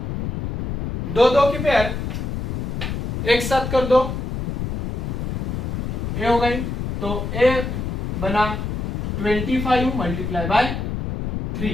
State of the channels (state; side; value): noise; left; rumble, 3 dB below the sound